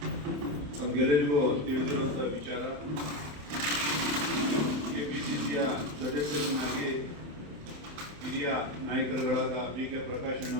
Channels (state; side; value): late; left; 27 ms